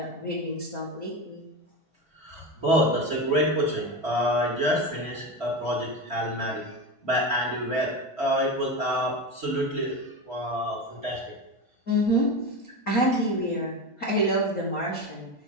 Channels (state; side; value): late; right; 1.5 ms